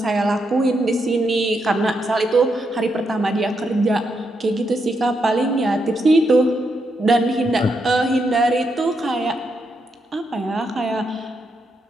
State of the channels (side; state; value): both; normal; correlation 0.81